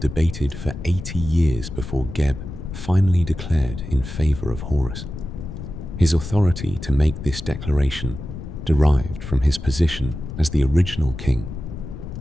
for 80 years before Geb finally declared in favor of Horus. His authority to make this declaration derived from his position as the original king.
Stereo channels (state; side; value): noise; left; rumble, 10 dB below the sound